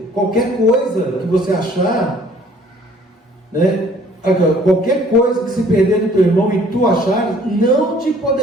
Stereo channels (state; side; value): normal; both; correlation 0.56